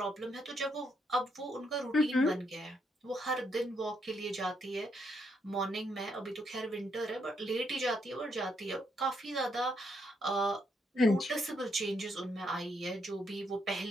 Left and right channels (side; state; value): both; normal; correlation 0.76